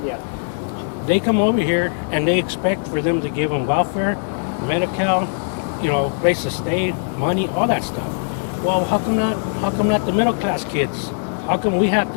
Yeah. They come over here and they expect for them to give them welfare, medical, you know, place to stay, money, all that stuff. Well, how come not the middle class kids? How come we have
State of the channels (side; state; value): right; silent; digital silence